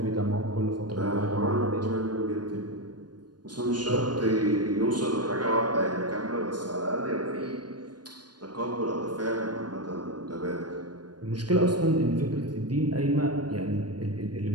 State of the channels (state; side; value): late; left; 0.70 ms